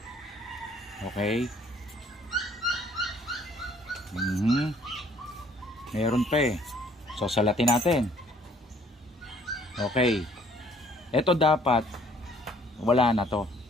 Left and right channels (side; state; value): both; normal; correlation 0.60